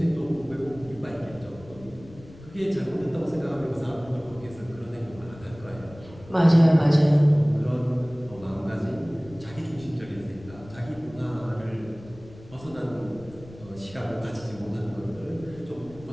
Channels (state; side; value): noise; left; rumble, 19 dB below the sound